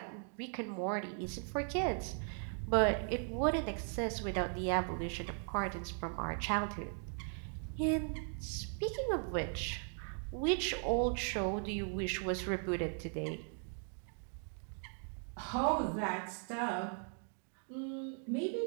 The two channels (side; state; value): left; silent; 52 dB below the other